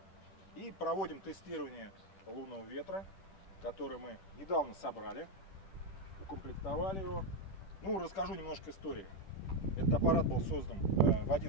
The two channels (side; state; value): right; late; 10 ms